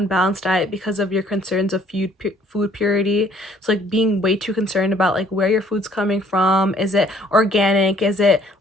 diet because of your concerns of food purity. So like being way too concerned about like where your food's coming from. Is it organic? Is it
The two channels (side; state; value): both; normal; correlation 0.60